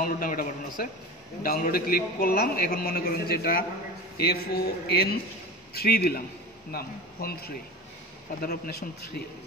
নামে একটা বাটন আছে, ডাউনলোডে ক্লিক করলাম। এখন মনে করেন যে এটা FON3 দিলাম নাম, ফোন 3, ফাদার অফ নেশন 3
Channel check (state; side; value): normal; both; correlation 0.31